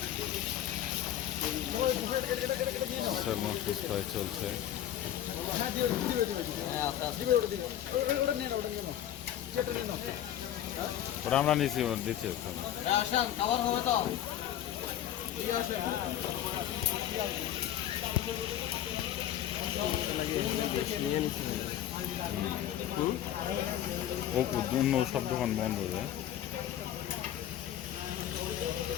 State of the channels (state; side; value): quieter; right; 11.5 dB